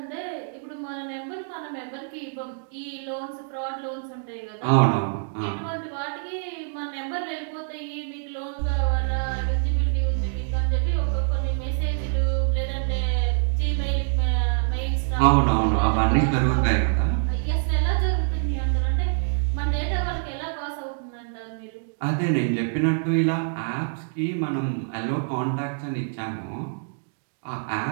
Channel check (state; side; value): silent; left; digital silence